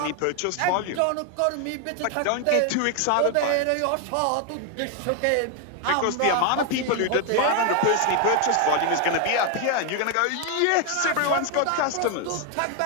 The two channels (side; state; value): both; different; correlation 0.01